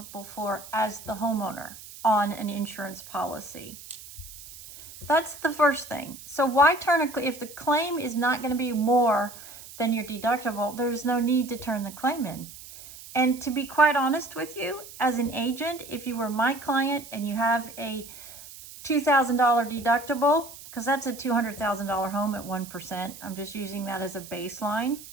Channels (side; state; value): right; noise; hiss, 16 dB below the sound